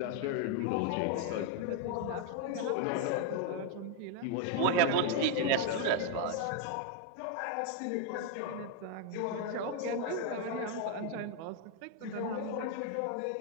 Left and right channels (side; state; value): both; different; correlation 0.01